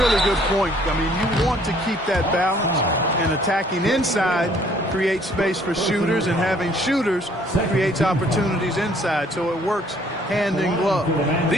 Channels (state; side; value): normal; both; correlation 0.60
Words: good point. I mean, you want to keep that balance, and attacking inside creates space for shooters, and having shooters creates opportunities inside, so it works hand in glove.